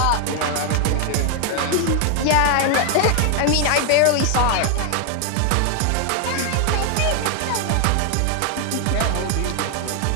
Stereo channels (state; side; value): different; both; correlation 0.00